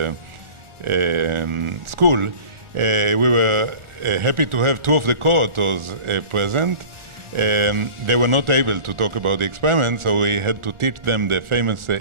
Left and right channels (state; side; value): late; left; 1.4 ms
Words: school. We were happy to have two of the co-authors present. They were not able to talk about the experiment, so we had to teach them the famous